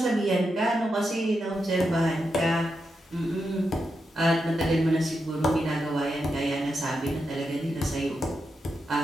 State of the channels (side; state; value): both; normal; correlation 0.86